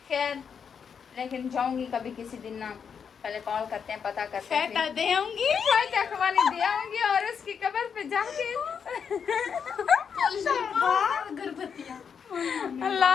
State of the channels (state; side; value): quieter; right; 6.8 dB